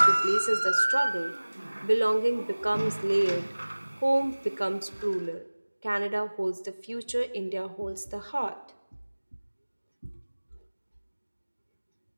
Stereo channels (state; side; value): inverted; both; correlation -1.00